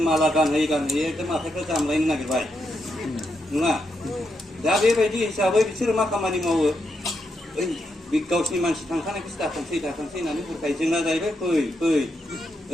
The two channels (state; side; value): normal; both; correlation 0.82